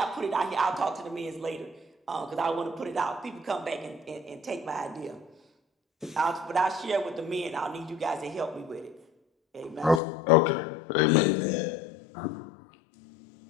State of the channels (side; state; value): right; drops out; at 10.0 s